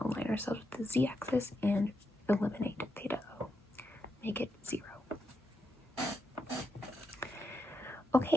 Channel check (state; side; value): normal; both; correlation 0.84